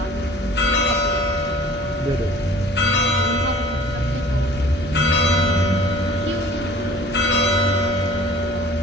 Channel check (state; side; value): normal; both; correlation 0.48